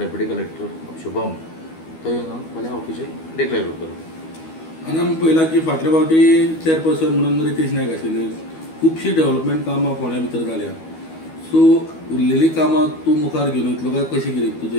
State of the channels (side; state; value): right; late; 12 ms